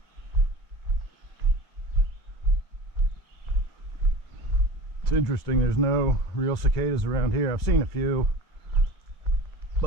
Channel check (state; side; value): late; right; 2.3 ms